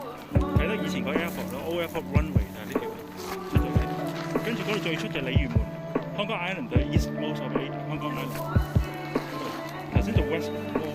德以前個 airport 咯 ，Old Airport Runway 就係呢條出咗嚟。跟住嗰度最出就係鯉魚門 ，Hong Kong Island 就係 East Most of Hong Kong Island。頭先做 West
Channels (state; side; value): identical; both; correlation 1.00